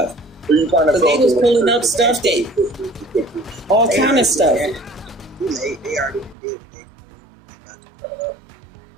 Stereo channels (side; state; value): left; drops out; at 6.4 s